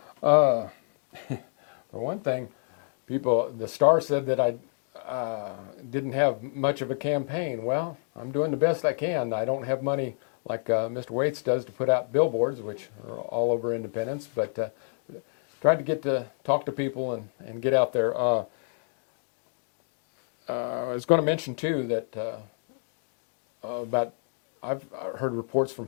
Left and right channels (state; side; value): silent; right; digital silence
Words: For one thing, the Star said that I didn't have much of a campaign. Well, I'm doing the best I can. I don't have money like Mr. Waits does to put out billboards, which are all over Independence, but tried to get to talk to people and get out there. I was going to mention too that I've heard reports from